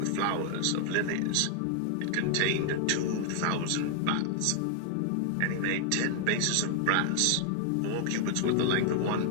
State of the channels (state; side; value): different; both; correlation 0.00